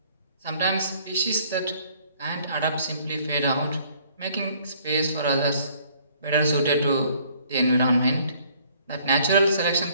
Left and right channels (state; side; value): inverted; both; correlation -0.60